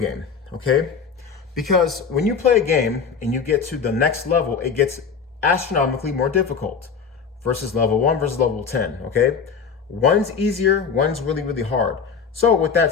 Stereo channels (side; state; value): right; quieter; 6.0 dB